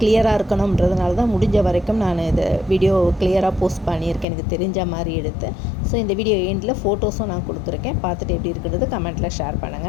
இருக்கணுன்றதுனால தான் முடிஞ்ச வரைக்கும் நான் இதை வீடியோ கிளியராக போஸ்ட் பண்ணியிருக்கேன், எனக்கு தெரிஞ்ச மாதிரி எடுத்து. ஸோ இந்த வீடியோ எண்டில் ஃபோட்டோஸும் நான் கொடுத்துருக்கேன். பார்த்துட்டு எப்படி இருக்கிறது கமெண்ட்டில் ஷேர்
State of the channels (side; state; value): right; drops out; at 4.2 s